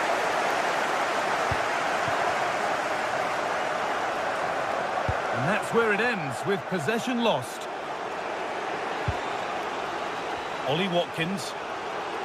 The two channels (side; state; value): both; identical; correlation 1.00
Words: And that's where it ends, with possession lost. Ollie Watkins.